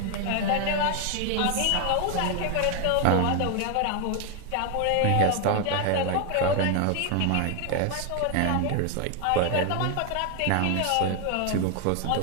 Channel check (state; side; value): different; both; correlation 0.01